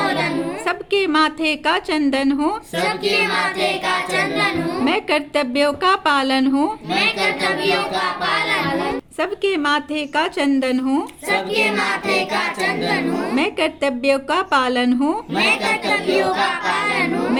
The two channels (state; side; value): identical; both; correlation 1.00